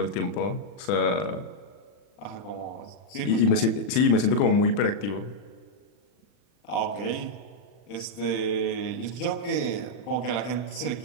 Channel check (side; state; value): right; late; 40 ms